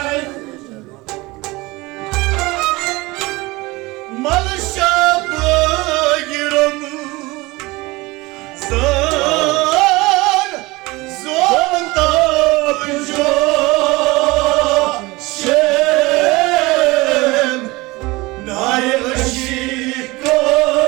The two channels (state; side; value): quieter; left; 22.3 dB